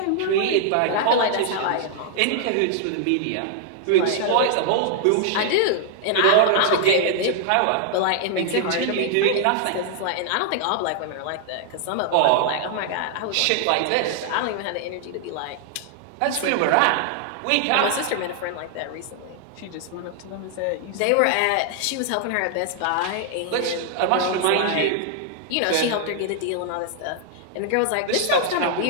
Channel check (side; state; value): both; different; correlation 0.00